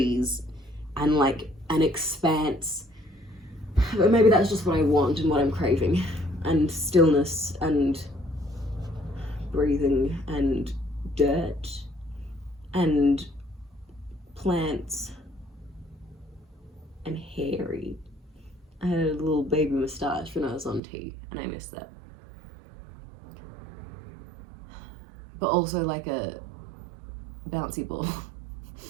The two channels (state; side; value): drops out; left; at 20.8 s